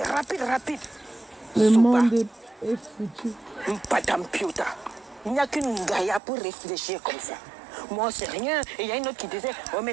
rapide, rapide. Le Souba, monde est foutu. Madame Piota. Il n'y a qu'une gaïa pour réfléchir comme ça. Moi, c'est rien. Et il y a une autre qui disait, oh,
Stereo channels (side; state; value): left; drops out; at 6.2 s